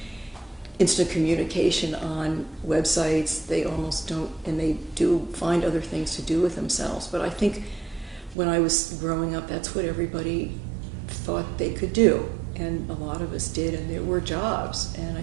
instant communication on websites. They almost don't, and they do find other things to do with themselves. But I think when I was growing up, that's what everybody thought they could do. And a lot of us did, and there were jobs. And I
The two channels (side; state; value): left; drops out; at 8.3 s